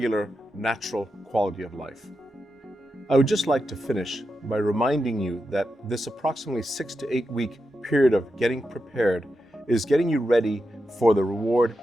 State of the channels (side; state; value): both; normal; correlation 0.88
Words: natural quality of life. I would just like to finish by reminding you that this approximately 6 to 8 week period of getting prepared is getting you ready for the reward